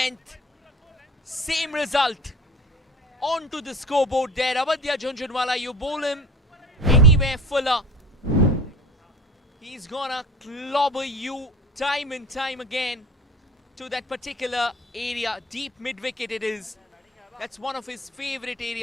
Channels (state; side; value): normal; both; correlation 0.39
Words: Same result. Onto the scoreboard there. Abadya Jhunjhunwala, you bowl him anywhere fuller. He's gonna clobber you time and time again to that particular area. Deep mid-wicket it is. That's one of his favorite